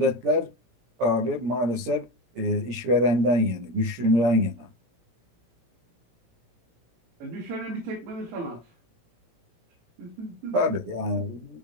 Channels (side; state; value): left; late; 17 ms